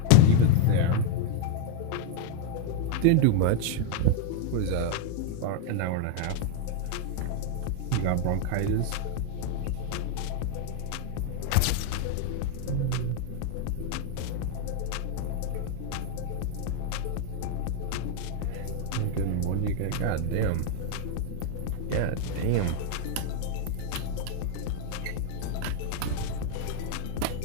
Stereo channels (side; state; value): both; different; correlation 0.00